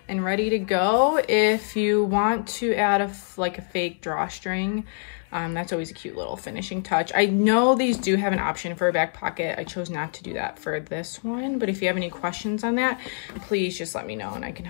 and ready to go. If you want to add like a fake drawstring, that's always a cute little finishing touch. I know these do have an option for a back pocket. I chose not to do that for this one, but if you have any questions on that, please just let me know and I can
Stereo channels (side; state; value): right; silent; digital silence